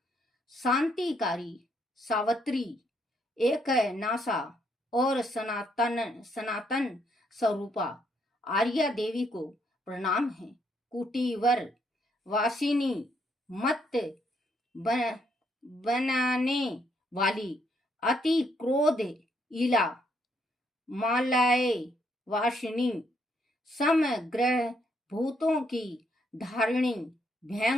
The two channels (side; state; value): both; normal; correlation 0.73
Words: शांतिकारी, सावित्री, एक नासा और सनातन स्वरूपा आर्या देवी को प्रणाम है। कुटीवर वासिनी, मत बनाने वाली, अति क्रोध इला, मालाए वासिनी, समग्र भूतों की धारिणी,